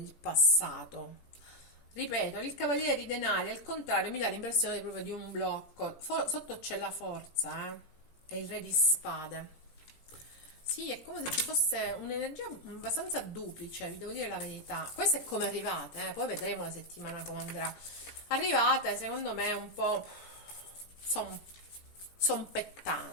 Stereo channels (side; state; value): right; late; 17 ms